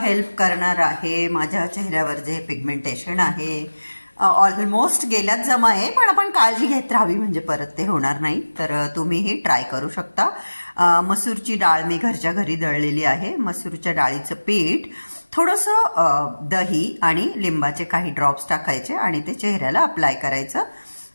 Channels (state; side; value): inverted; both; correlation -1.00